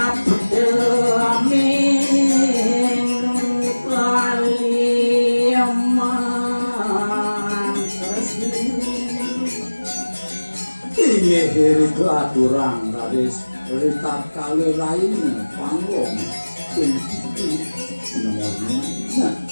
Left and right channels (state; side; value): inverted; both; correlation -1.00